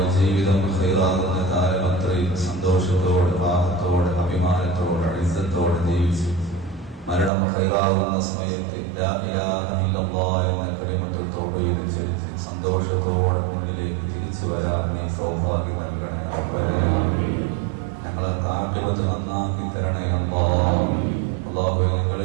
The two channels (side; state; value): left; drops out; at 7.3 s